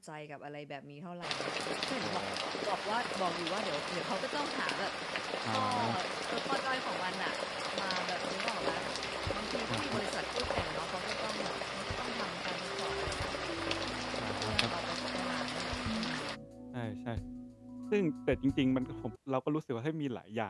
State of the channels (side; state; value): both; identical; correlation 1.00